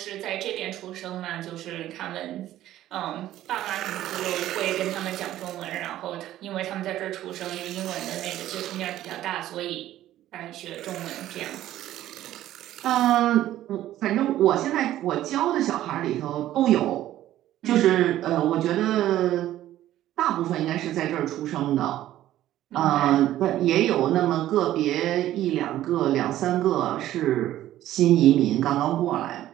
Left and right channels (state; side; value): quieter; left; 13.5 dB